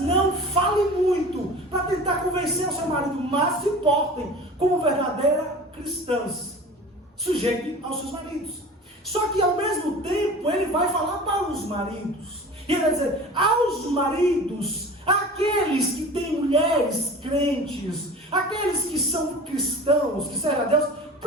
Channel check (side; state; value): both; normal; correlation 0.38